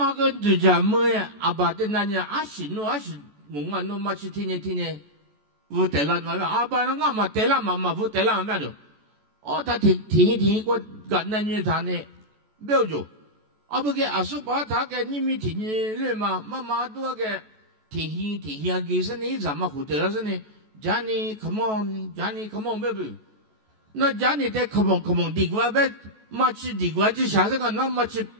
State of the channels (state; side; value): late; left; 14 ms